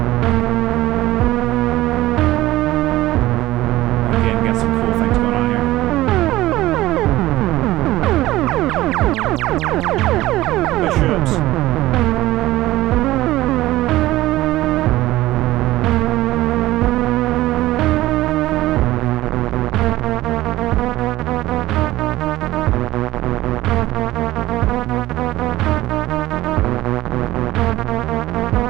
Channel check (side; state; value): left; quieter; 16.7 dB